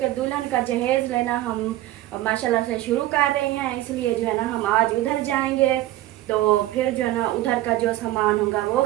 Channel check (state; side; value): quieter; left; 15.4 dB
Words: दुल्हन का जहेज लेना हम माशाल्लाह से शुरू कर रहे हैं। इसलिए जो है ना हम आज उधर जाएंगे, तो फिर जो है ना उधर का जो सामान होगा वो